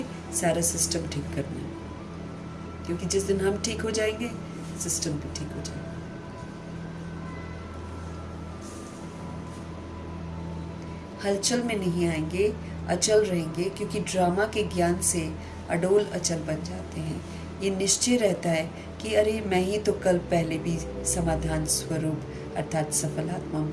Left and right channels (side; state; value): both; identical; correlation 1.00